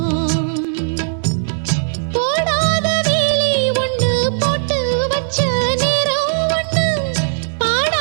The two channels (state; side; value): silent; left; 67 dB below the other